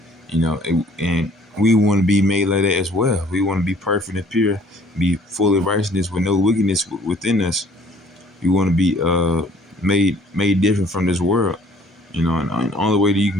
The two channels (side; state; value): both; normal; correlation 0.57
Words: You know, and we want to be made like that as well. We want to be perfect and pure, be full of righteousness with no wickedness within us. We want to be made different from this world. You know, and the only way that you